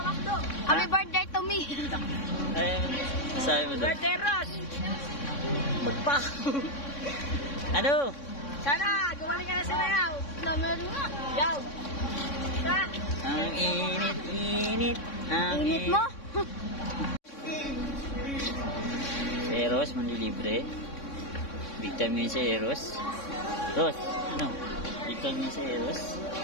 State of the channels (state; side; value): late; right; 3.6 ms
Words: Makdo? Happy birthday to me. Ay, sabi mo doon. Birthday, Ross. Magpa. Ano? Sana, gumaling ka na sa mayaw. Meron nga. Yaw. Sa. Ang init. Ang Init mo? Si Eros, manlilibre. Big time ngayon si Eros. Ros, ano? Big time ngayon si Eros.